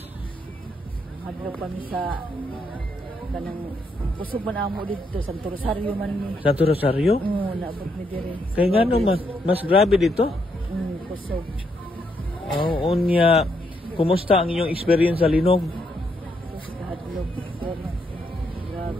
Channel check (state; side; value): normal; both; correlation 0.76